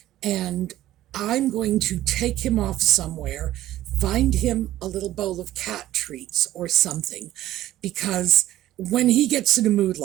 And I'm going to take him off somewhere, find him a little bowl of cat treats or something, because when he gets in a mood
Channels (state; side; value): quieter; left; 14.2 dB